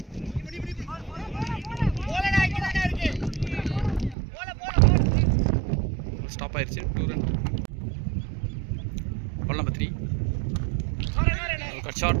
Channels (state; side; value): drops out; left; at 4.2 s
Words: ஸ்டாப் ஆயிடுச்சு. 2 run. Ball number 3 cut shot